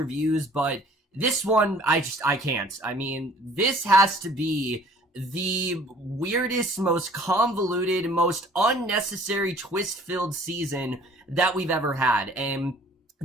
but this one, I can't. I mean, this has to be the weirdest, most convoluted, most unnecessary twist-filled season that we've ever had, and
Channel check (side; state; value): both; normal; correlation 0.53